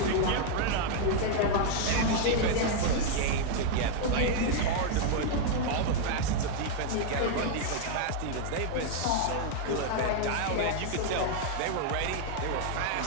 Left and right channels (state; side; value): different; both; correlation 0.00